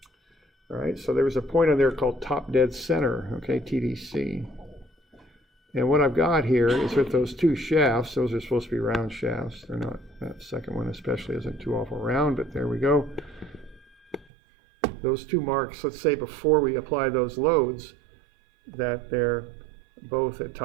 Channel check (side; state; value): left; drops out; at 14.2 s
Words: All right, so there was a point on there called top dead center, okay, TDC. And what I've got here is with those two shafts, those are supposed to be round shafts. They're not, that second one especially isn't too awful round, but there we go. Those two marks, let's say before we apply those loads, that they're both at